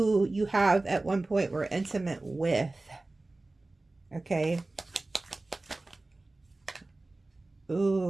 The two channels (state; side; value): quieter; left; 3.0 dB